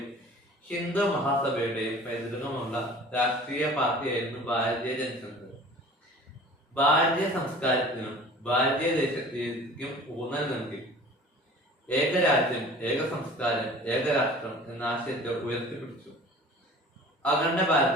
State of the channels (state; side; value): normal; both; correlation 0.45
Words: ഹിന്ദു മഹാസഭയുടെയും പൈതൃകമുള്ള രാഷ്ട്രീയ പാർട്ടിയായിരുന്നു ഭാരതീയ ജനസംഘ്. ഭാരതീയ സംസ്കാരത്തിനും ഭാരതീയ ദേശീയതയ്ക്കും ഊന്നൽ നൽകി. ഏകരാജ്യം, ഏക സംസ്കാരം, ഏകരാഷ്ട്രം എന്ന ആശയത്തെ ഉയർത്തിപ്പിടിച്ചു. അഖണ്ഡ